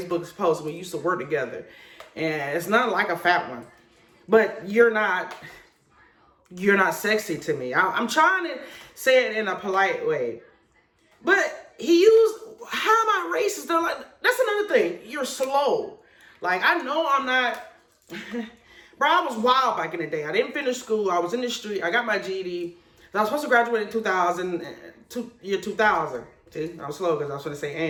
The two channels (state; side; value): identical; both; correlation 1.00